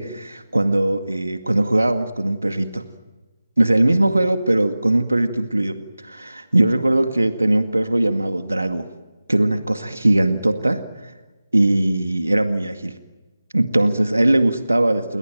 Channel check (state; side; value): inverted; both; correlation -0.97